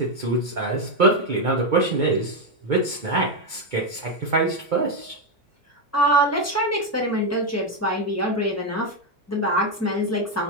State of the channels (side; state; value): both; normal; correlation 0.06